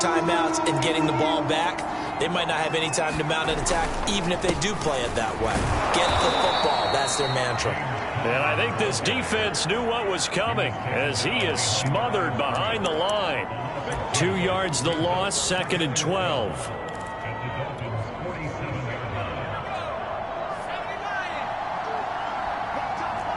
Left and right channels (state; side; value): identical; both; correlation 1.00